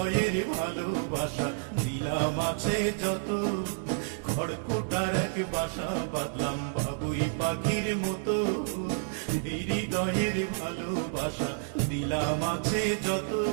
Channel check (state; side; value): silent; left; digital silence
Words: ভালোবাসা দিলাম আছে যত। খড়কুটার এক বাসা বাঁধলাম বাবুই পাখির মতো, হৃদয়ের ভালোবাসা দিলাম আছে যত।